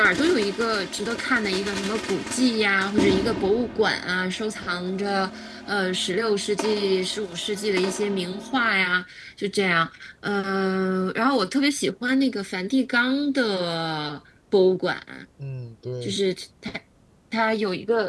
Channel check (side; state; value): both; identical; correlation 1.00